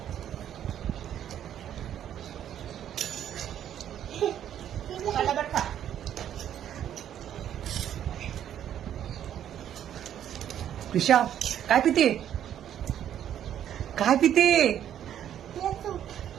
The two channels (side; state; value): left; quieter; 10.4 dB